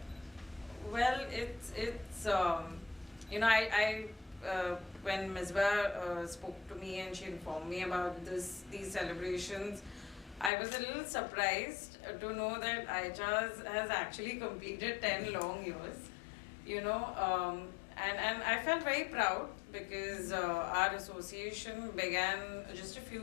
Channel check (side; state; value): right; drops out; at 10.5 s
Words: Well, it's you know, I when Misba spoke to me and she informed me about these celebrations, I was a little surprised to know that ICHARS has actually completed 10 long years, you know, and I felt very proud because our association began just a few